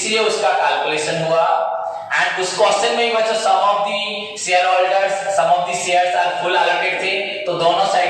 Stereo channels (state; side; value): identical; both; correlation 1.00